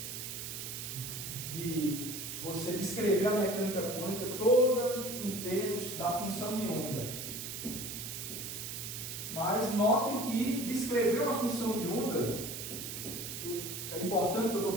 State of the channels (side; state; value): right; noise; hiss, 6 dB below the sound